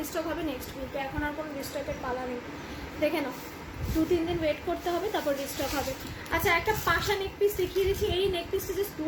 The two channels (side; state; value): both; identical; correlation 1.00